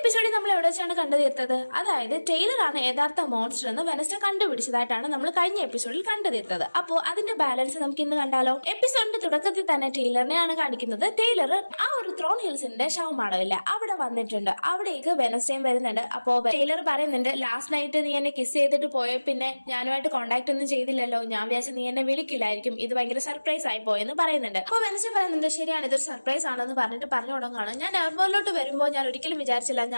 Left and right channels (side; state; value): both; inverted; correlation -1.00